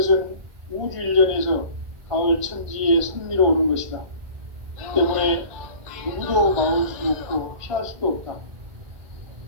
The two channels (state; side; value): late; left; 1.4 ms